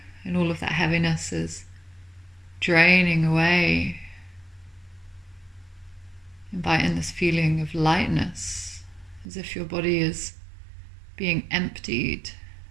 and all of that heaviness is draining away, invite in this feeling of lightness, as if your body is being emptied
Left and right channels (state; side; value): drops out; left; at 9.2 s